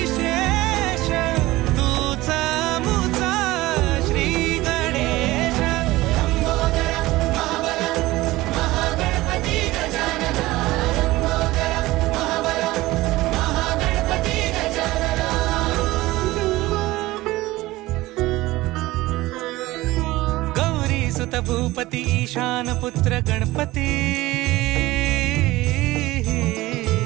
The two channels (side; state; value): left; quieter; 18.5 dB